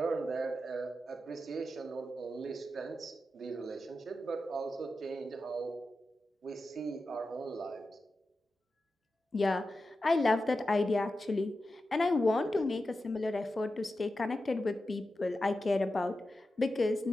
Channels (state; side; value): normal; both; correlation 0.91